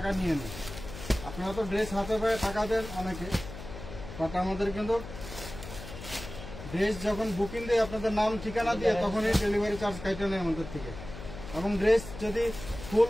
নিয়ে নেই। আপনারা তো ড্রেস হাতে পায়ে টাকা দেন অনেকে, বাট আমাদের কিন্তু ড্রেস যখন বুকিং দেয় আপনাদের নাম ঠিকানা দিয়ে তখনই ডেলিভারি চার্জ কাটা নেই আমাদের থেকে। এবং ড্রেস যদি ফুল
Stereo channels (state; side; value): noise; left; hum, 12 dB below the sound